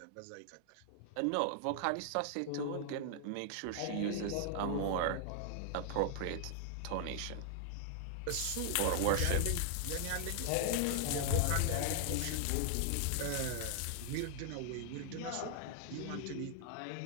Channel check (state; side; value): different; both; correlation 0.00